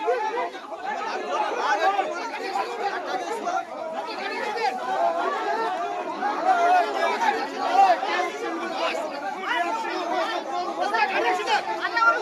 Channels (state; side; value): identical; both; correlation 1.00